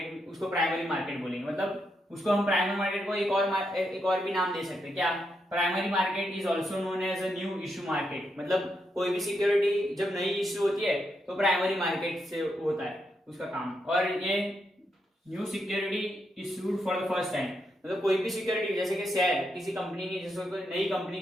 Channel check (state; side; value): normal; both; correlation 0.82